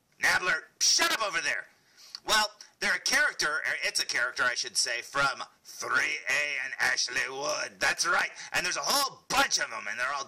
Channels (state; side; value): identical; both; correlation 1.00